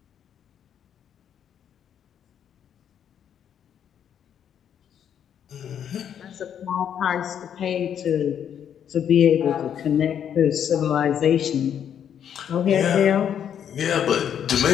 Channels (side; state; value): right; quieter; 9.0 dB